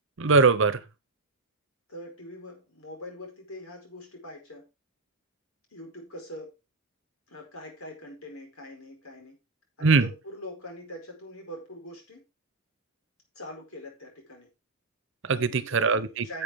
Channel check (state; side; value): quieter; left; 3.9 dB